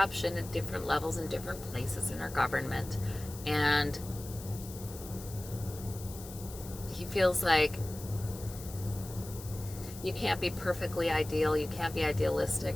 at different levels in different places in our government. And he feels like you can't be perfectly ideal. You can't be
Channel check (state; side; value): noise; left; hiss, 15 dB below the sound